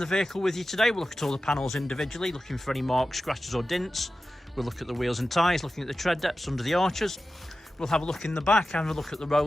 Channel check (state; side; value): normal; both; correlation 0.93